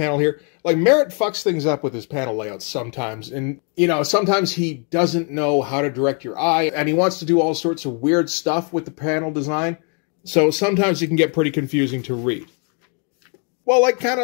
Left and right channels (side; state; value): right; quieter; 39.0 dB